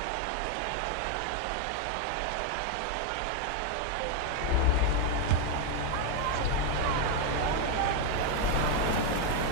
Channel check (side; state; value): both; different; correlation 0.01